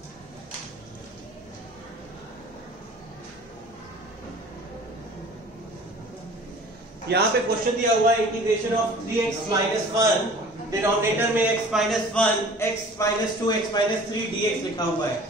यहाँ पे क्वेश्चन दिया हुआ है integration of 3x minus 1, denominator में x minus 1, x minus 2, x minus 3 dx लिखा हुआ है।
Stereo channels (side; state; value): both; normal; correlation 0.46